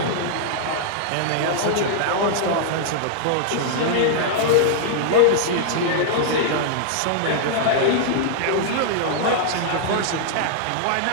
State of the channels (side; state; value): both; different; correlation -0.01